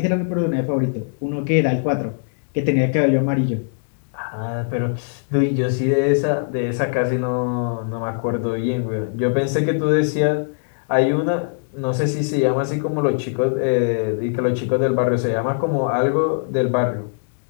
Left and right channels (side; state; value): right; silent; 65 dB below the other